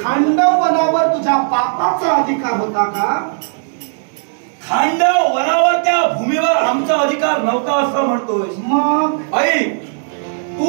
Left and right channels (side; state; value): left; silent; digital silence